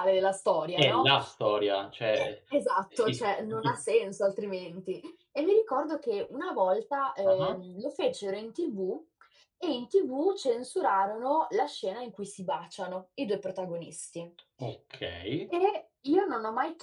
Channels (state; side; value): identical; both; correlation 1.00